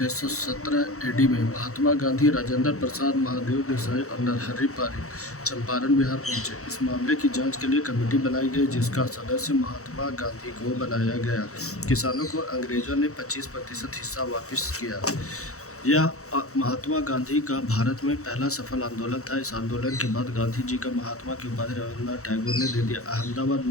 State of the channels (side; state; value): right; late; 0.64 ms